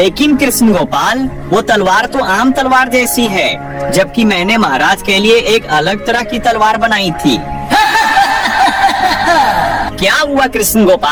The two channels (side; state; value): both; identical; correlation 1.00